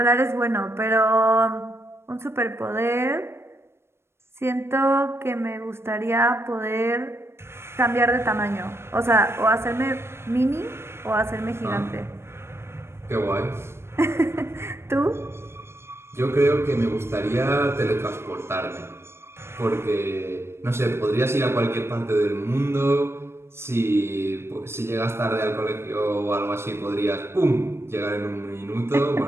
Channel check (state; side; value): late; left; 0.12 ms